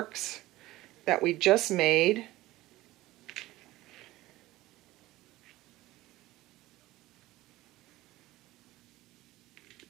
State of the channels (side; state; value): left; quieter; 17.5 dB